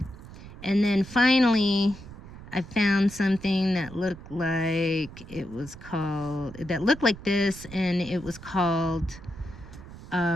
And then finally, I found something that looked like that looked like this, and it was called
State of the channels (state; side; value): noise; right; rumble, 16 dB below the sound